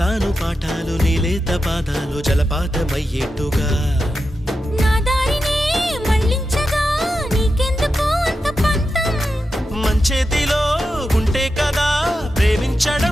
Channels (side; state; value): both; normal; correlation 0.90